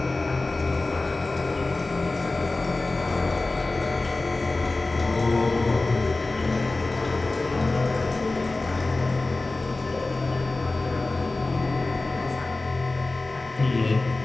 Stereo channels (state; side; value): quieter; right; 3.2 dB